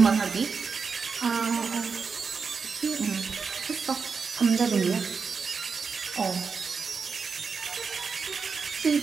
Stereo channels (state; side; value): quieter; left; 5.4 dB